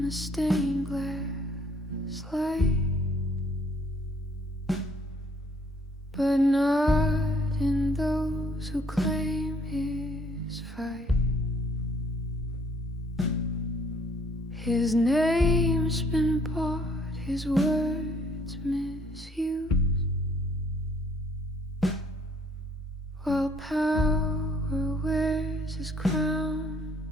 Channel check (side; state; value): both; normal; correlation 0.62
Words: the stained glass light, but not in those who claim his fight. His name's been bought, his words misused, while power wears his crown